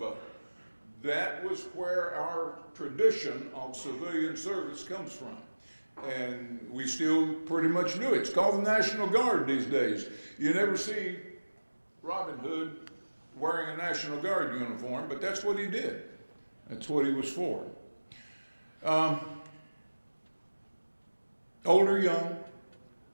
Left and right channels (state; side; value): inverted; both; correlation -1.00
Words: That was where our tradition of civilian service comes from. And we still pretty much do it. It's called the National Guard these days. You never see Robin Hood wearing a National Guard uniform, but that's what he did. That's what he was for. Old or young,